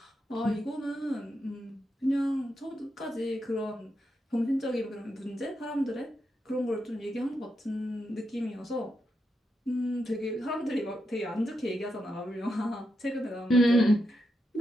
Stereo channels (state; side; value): normal; both; correlation 0.85